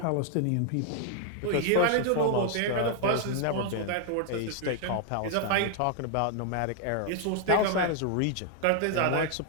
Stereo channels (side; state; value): both; different; correlation 0.00